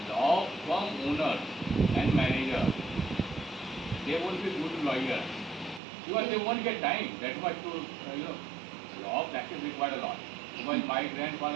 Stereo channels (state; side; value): drops out; left; at 5.8 s